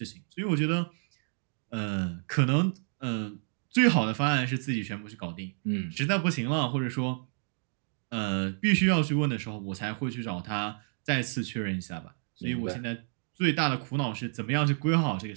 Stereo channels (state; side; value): silent; left; 58 dB below the other